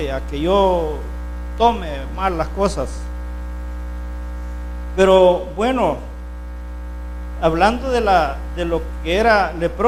a que yo tome mal las cosas. Pero bueno, hablando de lo que era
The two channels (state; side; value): identical; both; correlation 1.00